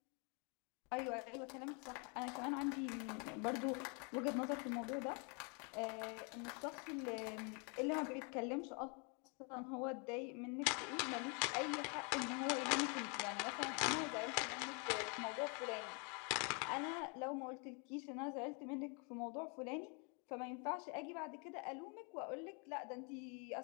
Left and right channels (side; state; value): right; quieter; 35.5 dB